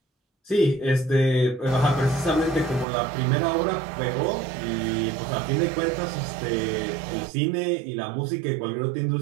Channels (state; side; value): drops out; left; at 2.9 s